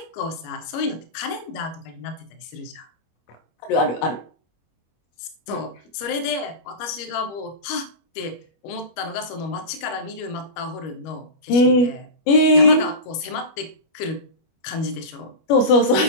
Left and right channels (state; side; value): late; right; 25 ms